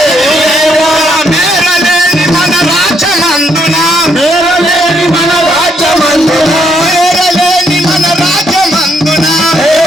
మేరలేని మన రాజ్యమందున మేరలేని మన రాజ్యమందున మేరలేని మన రాజ్యమందున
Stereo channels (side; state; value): both; normal; correlation 0.73